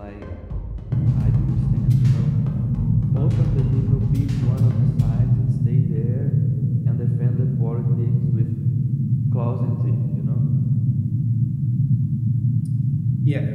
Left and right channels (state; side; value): identical; both; correlation 1.00